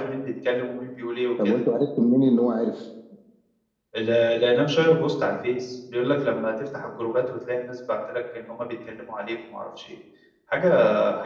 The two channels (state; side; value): identical; both; correlation 1.00